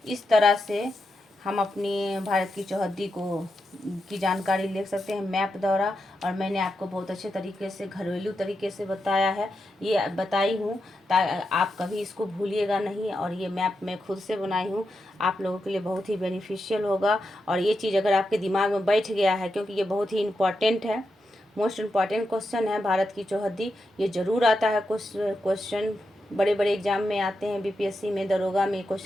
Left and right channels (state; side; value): normal; both; correlation 0.87